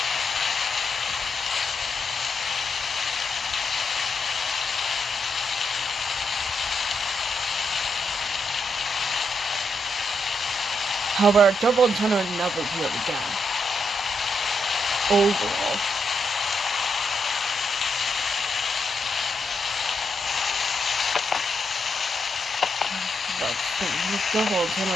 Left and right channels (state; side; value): normal; both; correlation 0.81